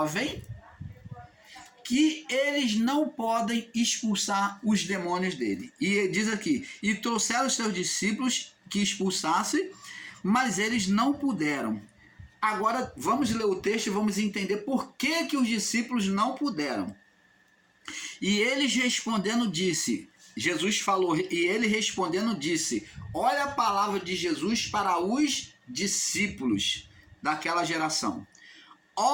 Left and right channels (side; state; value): both; identical; correlation 1.00